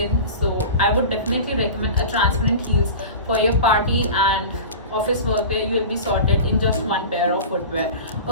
So I would definitely recommend a transparent heels for your party and office work where you will be sorted in just one pair of footwear.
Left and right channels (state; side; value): inverted; both; correlation -0.33